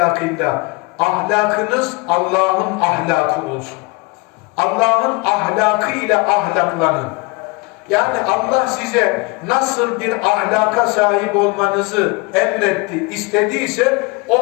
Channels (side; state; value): right; quieter; 26.7 dB